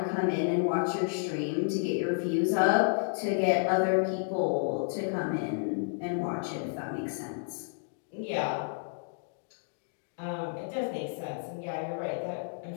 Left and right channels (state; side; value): silent; right; digital silence